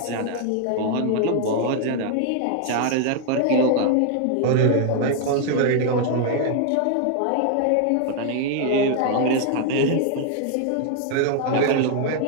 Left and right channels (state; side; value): different; both; correlation 0.00